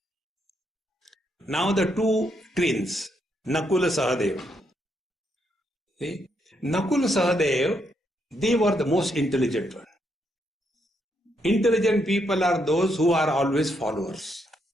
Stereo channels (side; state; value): both; normal; correlation 0.77